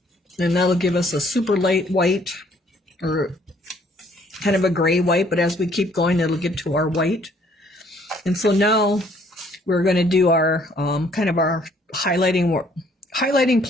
And that'll give us a super light white, or kind of a gray white, but as we keep going, it'll get to our white. And so now we're going to do our kind of our highlighting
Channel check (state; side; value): normal; both; correlation 0.62